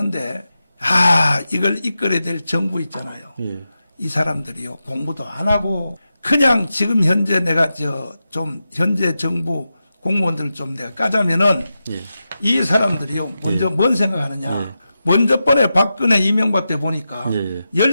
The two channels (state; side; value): inverted; both; correlation -0.90